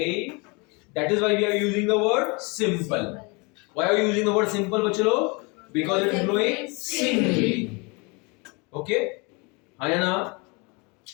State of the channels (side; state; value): right; quieter; 29.5 dB